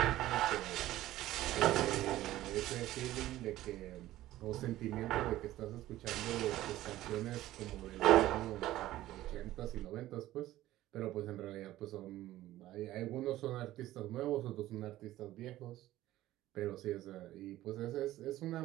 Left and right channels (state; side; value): quieter; left; 15.2 dB